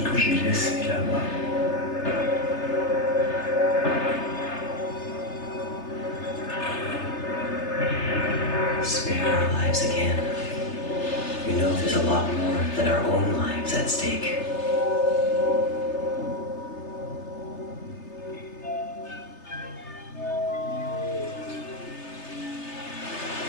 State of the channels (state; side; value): late; right; 3.3 ms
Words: que j'ai laissés là-bas. Spare our lives again. We know there's a lot more than our own lives at stake.